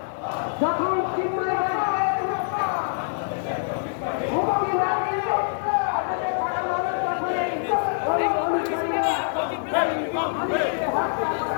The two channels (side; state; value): right; silent; digital silence